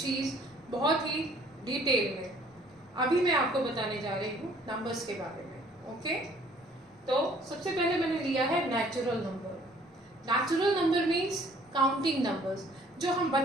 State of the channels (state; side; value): normal; both; correlation 0.58